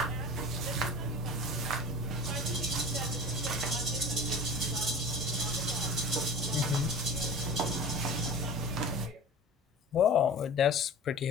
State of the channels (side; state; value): both; normal; correlation 0.37